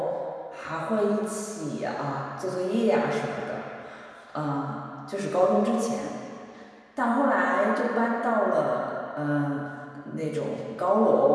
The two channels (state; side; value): identical; both; correlation 1.00